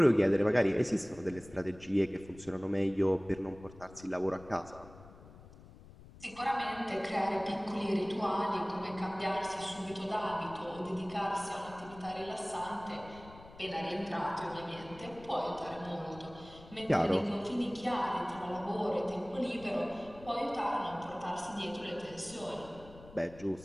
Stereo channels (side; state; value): left; noise; rumble, 19 dB below the sound